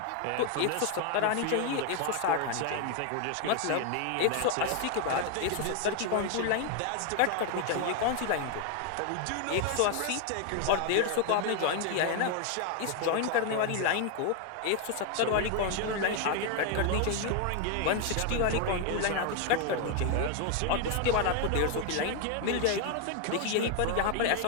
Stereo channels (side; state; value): both; different; correlation 0.00